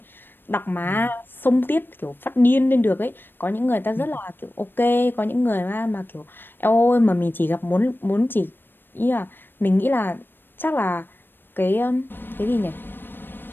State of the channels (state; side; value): late; right; 0.096 ms